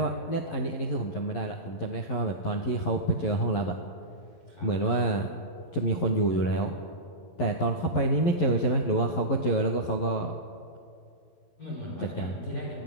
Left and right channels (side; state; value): right; late; 11 ms